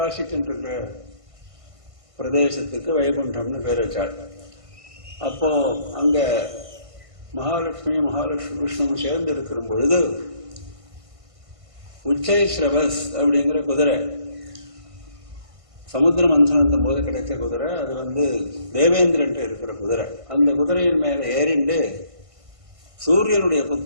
பிரதேசத்துக்கு வைகுண்டம்னு பேர் வச்சாள். அப்போ அங்க மகாலட்சுமி விஷ்ணுவும் சேர்ந்து இருக்கிற பொழுது உச்சைஸ்ரவஸ் அப்படிங்கிற குதிரை, சமுத்திர மந்தனத்தும் போது கிடைச்ச குதிரை, அது தேவேந்திரன் இருக்கிற குதிரை. அந்த குதிரையின் மேல ஏறிண்டு சூரியனுடைய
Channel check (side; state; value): left; late; 1.5 ms